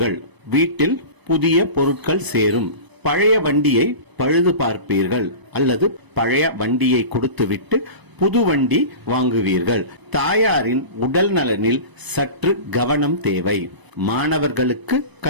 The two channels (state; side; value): late; left; 1.0 ms